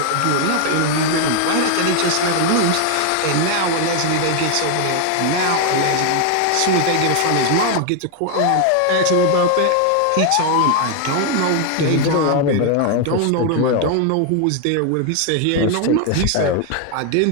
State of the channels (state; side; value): different; both; correlation 0.00